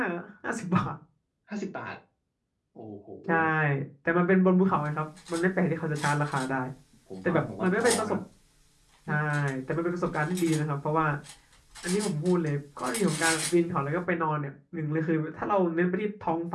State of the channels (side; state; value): both; identical; correlation 1.00